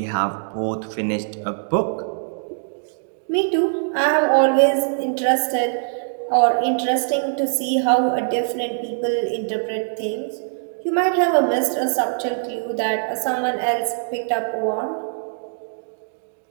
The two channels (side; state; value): left; silent; digital silence